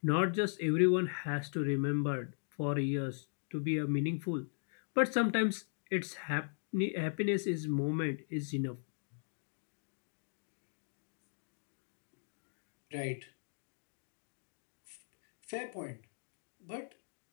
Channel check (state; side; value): silent; right; digital silence